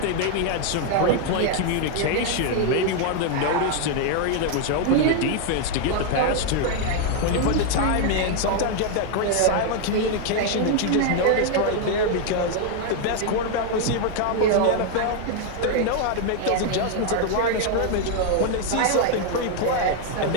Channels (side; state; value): both; different; correlation 0.00